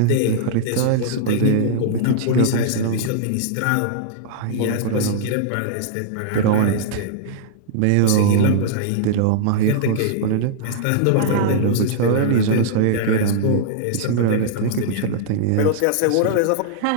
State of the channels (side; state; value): both; different; correlation -0.02